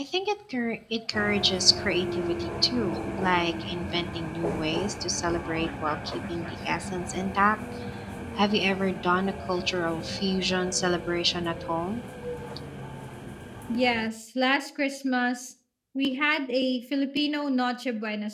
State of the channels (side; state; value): both; identical; correlation 1.00